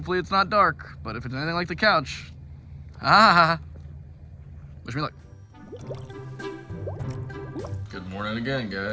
it's not dark, but if it's anything like the couch, wish me luck. Good morning again,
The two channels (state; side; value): identical; both; correlation 1.00